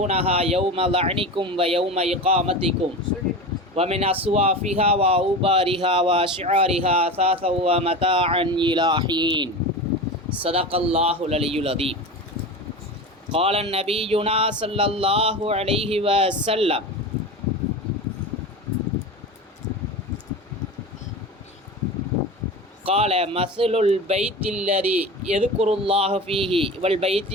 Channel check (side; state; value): both; normal; correlation 0.28